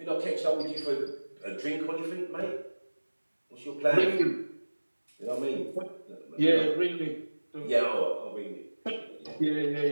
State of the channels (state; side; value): inverted; both; correlation -1.00